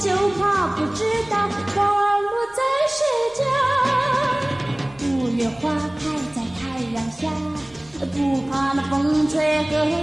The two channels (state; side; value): noise; right; rumble, 28 dB below the sound